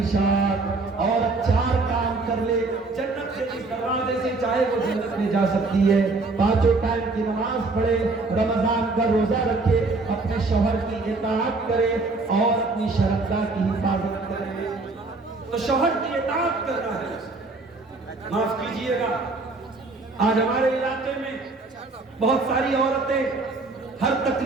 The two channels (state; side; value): quieter; left; 3.5 dB